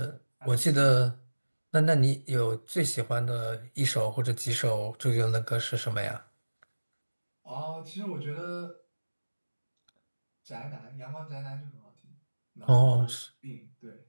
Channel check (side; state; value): both; inverted; correlation -1.00